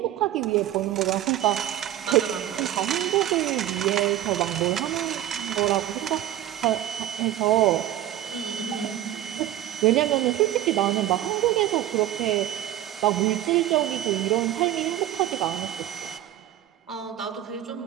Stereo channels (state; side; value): quieter; left; 12.6 dB